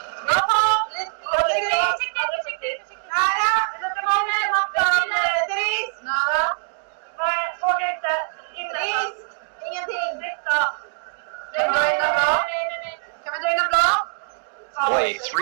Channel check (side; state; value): left; silent; digital silence